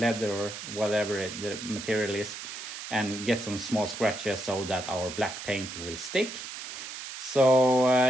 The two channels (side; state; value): right; noise; hiss, 9 dB below the sound